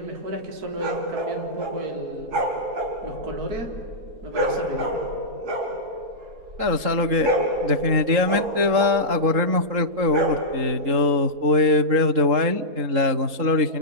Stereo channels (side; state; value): left; late; 3.8 ms